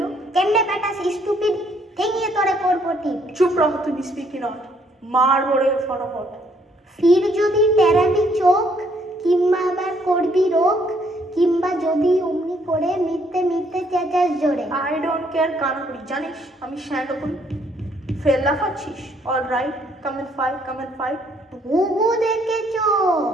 কেমনে বেটা স্টুপিড ঠেঙিয়ে তোরে করবো ঠিক। চুপ রহ, তুই স্পিকি নট, মার বড়ে ফটাফট। ফির যদি টেরাবি চোখ, কিংবা আবার করবি রোগ, কিংবা যদি অমনি করে মিথ্যে মিথ্যে চেঁচাস জোরে। আই ডোন্ট কেয়ার কানা করি, জানিস আমি শ্যান্ডো করি। ফেল লাফাচ্ছিস? All right, come and fight. ঘুঘু দেখেছো,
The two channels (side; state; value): both; normal; correlation 0.67